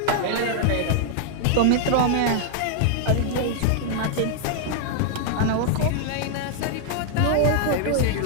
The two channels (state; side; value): different; both; correlation 0.00